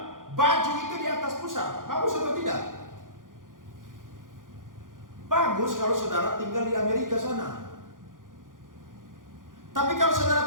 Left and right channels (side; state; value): left; late; 0.89 ms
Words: baju itu di atas pusar, bagus atau tidak? Bagus kalau saudara tinggal di Amerika sana. Tapi kalau